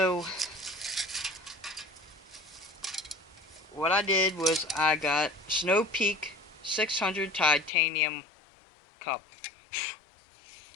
what I did was I got Snow Peak 600 titanium cup,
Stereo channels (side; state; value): right; drops out; at 7.7 s